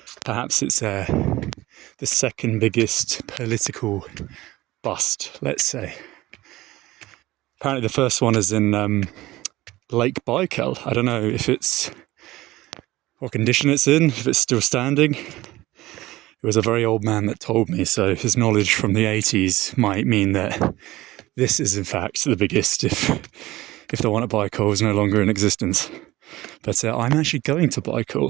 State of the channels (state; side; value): quieter; left; 17.7 dB